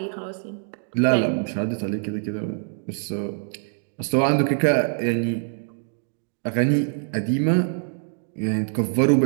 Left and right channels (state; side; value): silent; left; 57 dB below the other